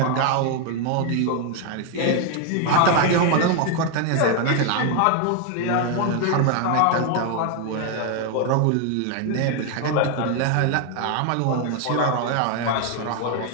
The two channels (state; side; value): different; both; correlation 0.01